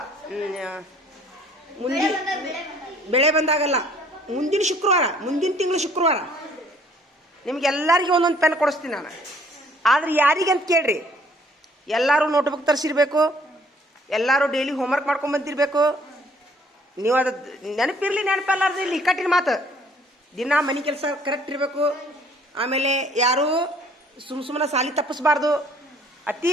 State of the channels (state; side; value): normal; both; correlation 0.59